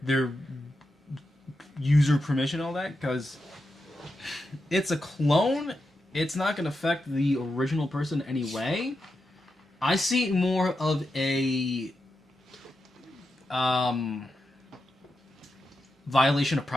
user permission, all that, because it's a clone. It's not gonna affect the original person anyway. I see it more of a violation of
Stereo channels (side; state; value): both; normal; correlation 0.88